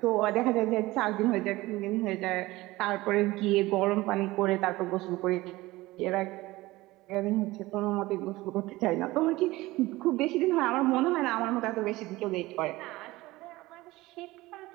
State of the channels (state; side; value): quieter; left; 19.3 dB